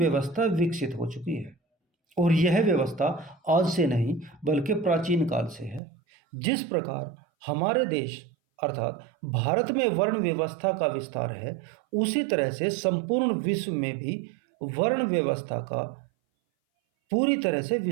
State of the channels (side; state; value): left; drops out; at 5.8 s